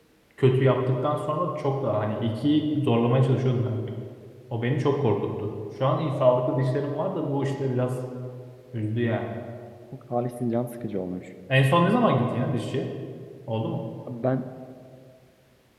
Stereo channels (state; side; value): identical; both; correlation 1.00